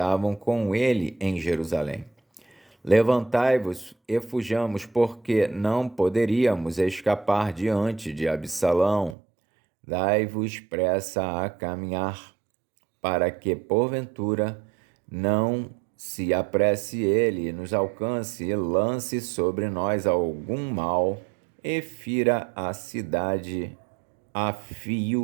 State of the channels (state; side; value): drops out; left; at 9.2 s